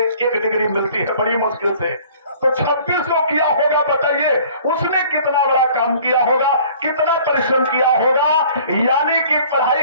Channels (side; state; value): both; inverted; correlation -0.52